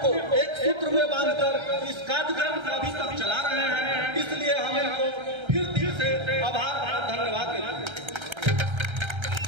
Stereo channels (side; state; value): left; late; 1.3 ms